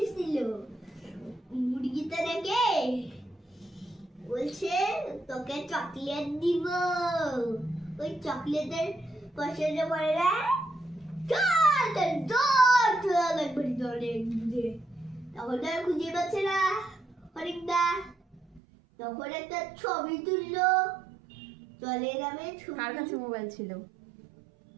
মুরগিটা দেখে বলছে তোকে চকলেট দিব। ওই চকলেটের পয়সাটা পড়ে না, তখন আর খুঁজে পাচ্ছে না হরিণটা। তখন একটা ছবি তুললো জলের নামে। কার কাছে মোবাইল ছিল?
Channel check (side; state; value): left; drops out; at 18.6 s